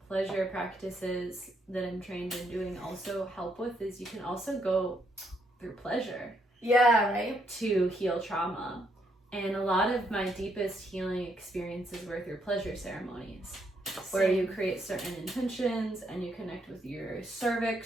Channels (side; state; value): both; normal; correlation 0.75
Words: pleasure practices that I'm trained in doing also help with, is you can also go through pleasure. Yeah, right. To heal trauma. And a lot of my deepest healing experiences were through pleasure ceremonies, where you create certain intentions and you connect with your